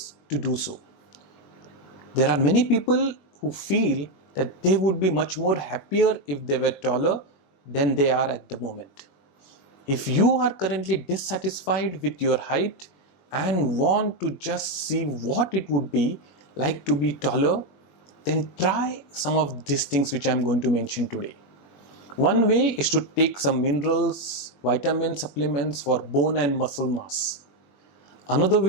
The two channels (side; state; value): right; late; 21 ms